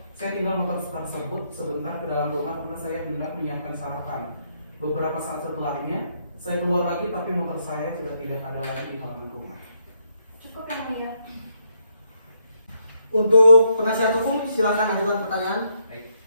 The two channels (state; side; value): inverted; both; correlation -0.76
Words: saya tinggal motor tersebut sebentar ke dalam rumah karena saya hendak menyiapkan sarapan. Beberapa saat setelahnya, saya keluar lagi tapi motor saya sudah tidak ada lagi di halaman rumah. Cukup yang mulia. Untuk penasihat hukum silakan ajukan pertanyaan. Baik.